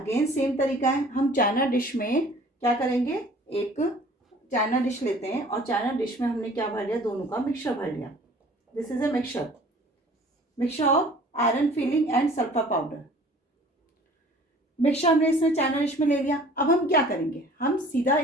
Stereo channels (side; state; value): both; normal; correlation 0.50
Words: सेम तरीका है। हम चाइना डिश में क्या करेंगे, एक चाइना डिश लेते हैं और चाइना डिश में हमने क्या भर लिया, दोनों का मिक्सचर भर लिया। This is a mixture, mixture of iron filling and sulphur powder. Mixture हमने इसमें चाइना डिश में ले लिया। अब हम क्या करेंगे, हम सीधा